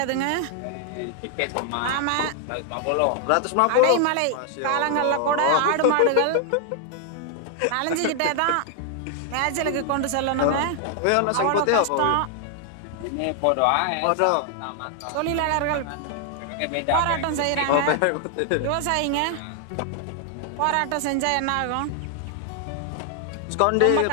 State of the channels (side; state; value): both; different; correlation 0.00